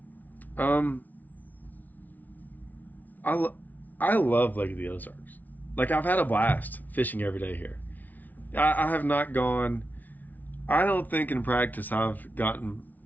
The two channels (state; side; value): late; right; 0.080 ms